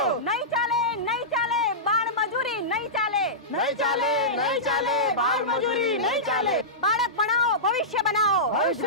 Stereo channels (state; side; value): normal; both; correlation -0.16